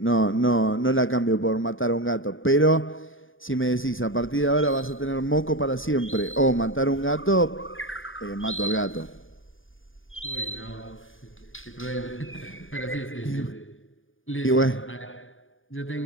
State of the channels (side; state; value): right; late; 0.58 ms